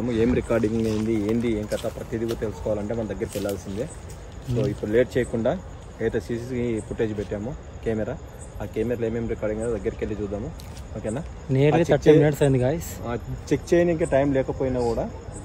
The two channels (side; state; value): both; identical; correlation 1.00